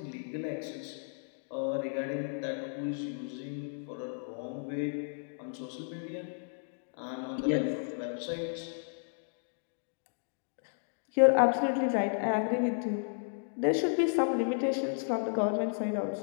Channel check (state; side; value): silent; right; digital silence